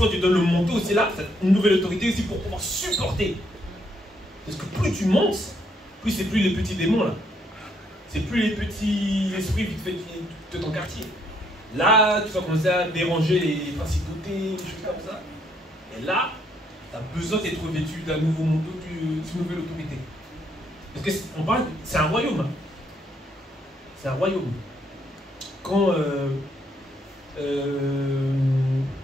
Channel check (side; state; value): both; normal; correlation 0.71